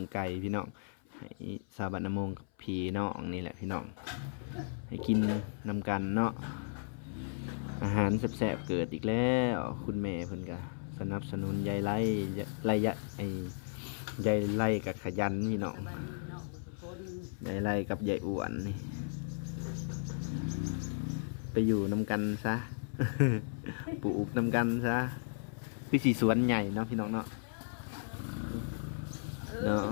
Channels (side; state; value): right; silent; 54 dB below the other